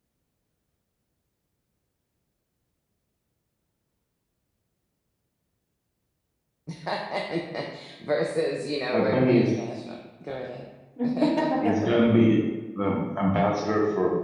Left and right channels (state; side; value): identical; both; correlation 1.00